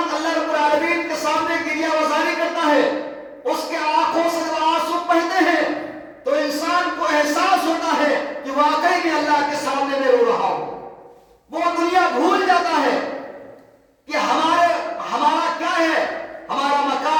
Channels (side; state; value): both; identical; correlation 1.00